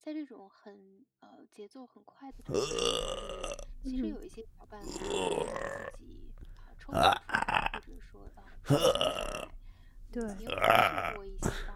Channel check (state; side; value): identical; both; correlation 1.00